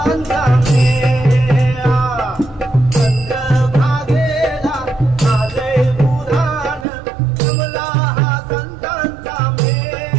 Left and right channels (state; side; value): drops out; left; at 6.9 s